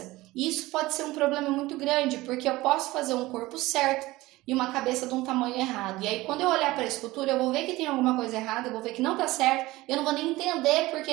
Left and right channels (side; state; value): left; quieter; 19.1 dB